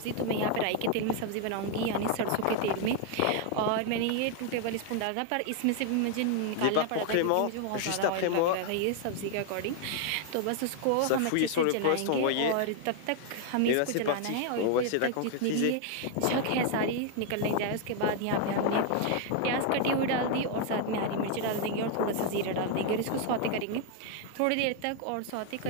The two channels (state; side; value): different; both; correlation 0.00